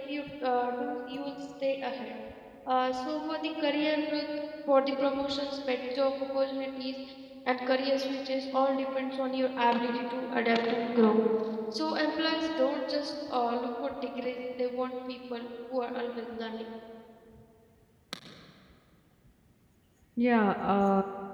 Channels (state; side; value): identical; both; correlation 1.00